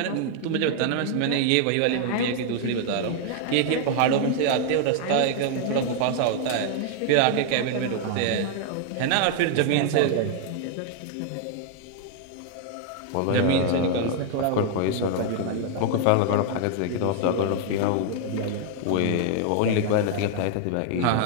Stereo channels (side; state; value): both; different; correlation 0.00